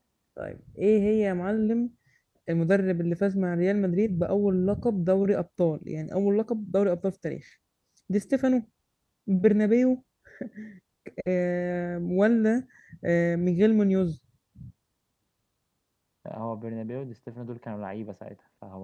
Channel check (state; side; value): identical; both; correlation 1.00